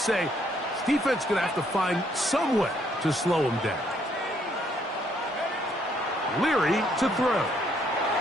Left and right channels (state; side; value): normal; both; correlation 0.69